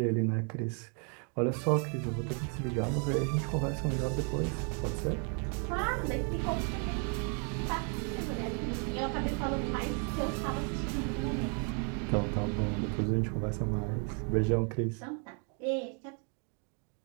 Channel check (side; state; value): left; quieter; 39.7 dB